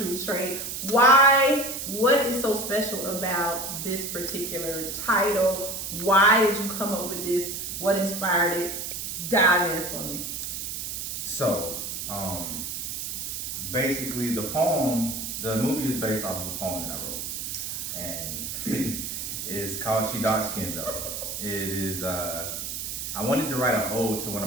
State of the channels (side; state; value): right; noise; hiss, 5 dB below the sound